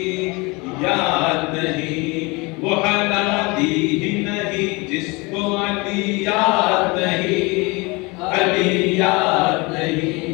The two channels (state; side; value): quieter; right; 26.2 dB